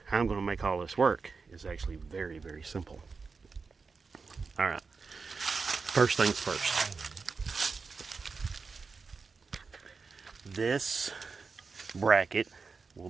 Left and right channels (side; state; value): left; quieter; 4.7 dB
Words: how I'm going to make all this work is actually very, very simple. All right. First things first. This bracket will